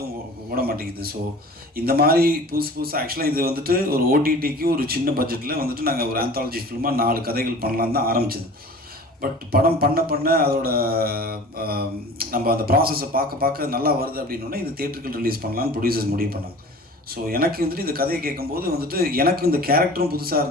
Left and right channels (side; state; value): both; normal; correlation 0.42